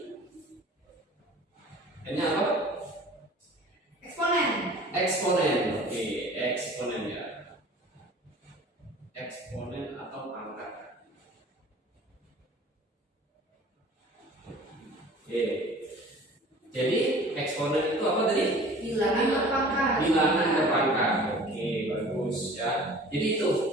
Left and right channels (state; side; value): normal; both; correlation 0.46